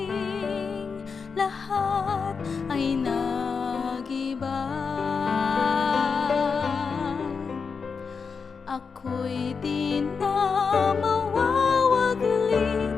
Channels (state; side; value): quieter; right; 5.4 dB